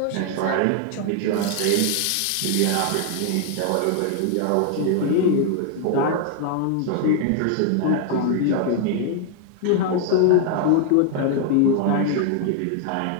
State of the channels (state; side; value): different; both; correlation 0.00